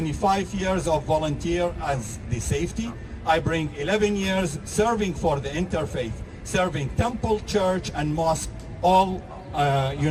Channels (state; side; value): identical; both; correlation 1.00